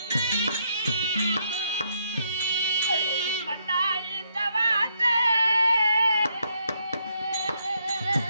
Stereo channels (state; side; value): inverted; both; correlation -0.74